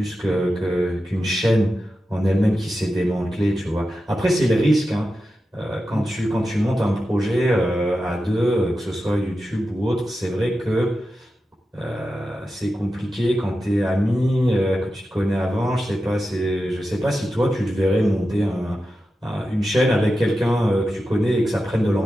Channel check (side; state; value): both; normal; correlation 0.91